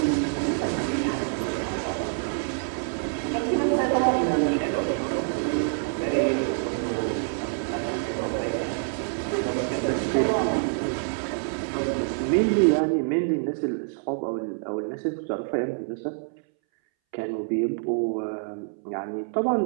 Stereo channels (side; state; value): left; silent; 61 dB below the other